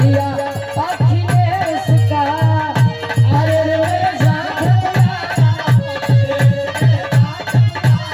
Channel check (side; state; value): both; identical; correlation 1.00